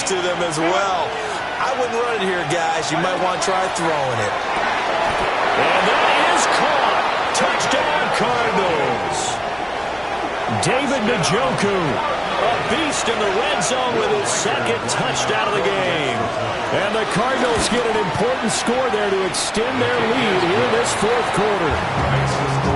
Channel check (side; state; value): both; identical; correlation 1.00